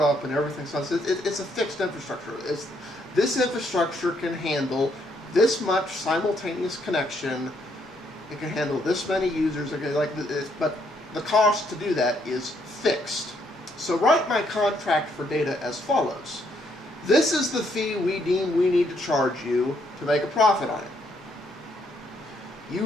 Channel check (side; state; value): both; normal; correlation 0.72